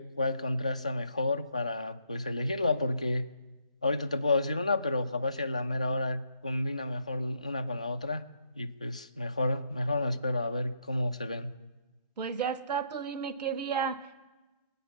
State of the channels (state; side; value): inverted; both; correlation -0.72